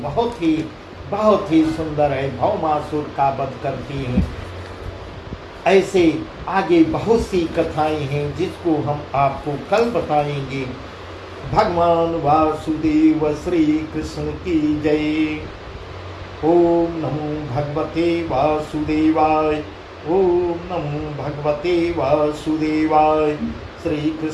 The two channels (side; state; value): both; identical; correlation 1.00